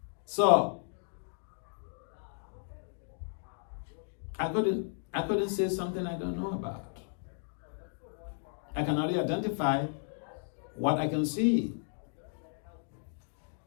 So I couldn't say something I don't know about. I can only identify what I can see.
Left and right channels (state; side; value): silent; right; digital silence